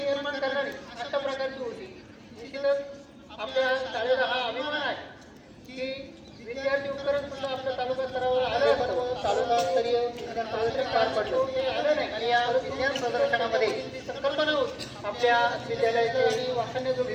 करणारी अशा प्रकारची होती. निश्चितच आपल्या शाळेचा हा अभिमान आहे की विद्यार्थी उपकरण सुद्धा आपल्या तालुका स्तरावर आलं असतं. तालुकास्तरीय विज्ञान प्रदर्शन पार पडलं ते आलं नाही आणि या विज्ञान प्रदर्शनामध्ये संकल्पना होती आपल्या विद्यालयाचे वाखाणण्याजोगी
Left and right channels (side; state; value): both; identical; correlation 1.00